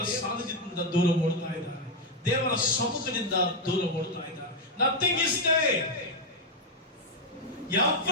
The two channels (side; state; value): both; normal; correlation 0.03